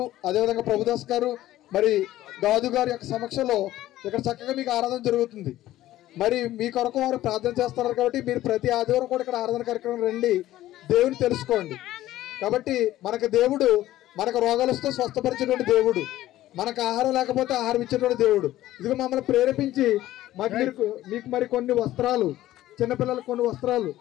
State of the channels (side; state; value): right; quieter; 14.7 dB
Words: అదేవిధంగా ప్రభుదాస్ గారు, మరి గాదు గారి యొక్క సమక్షంలో ఇక్కడ చక్కగా మీకు ఆరాధన జరుగుతుంది. మరి మీ కొరకు వారు ప్రార్థన చేస్తున్నారు. కాబట్టి మీరు ప్రతి ఆదివారం కూడా ఇక్కడ ఆరాధన కార్యక్రమం రండి, దేవుని తెలుసుకోండి. కాబట్టి మనకు దేవుడు మనకు రోగాలు వస్తే స్వస్థపరిచేటువంటి దేవుడు, మనకు ఆహారం లేకపోతే ఆహారం ఇచ్చేటువంటి దేవుడు. ఇదిగో మమ్మల్ని ప్రేరేపించి మీకు మరి కొన్ని వస్త్రాలు, చిన్నపిల్లలకు కొన్ని వస్త్రాలు,